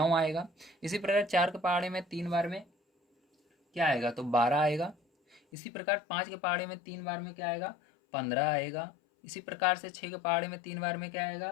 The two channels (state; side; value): drops out; right; at 5.4 s